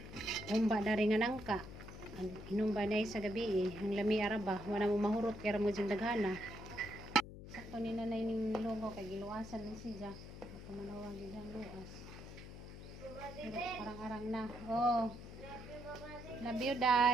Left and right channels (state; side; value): noise; left; hum, 13 dB below the sound